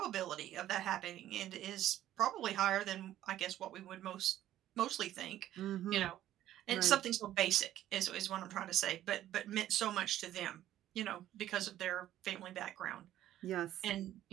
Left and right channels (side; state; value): left; quieter; 12.9 dB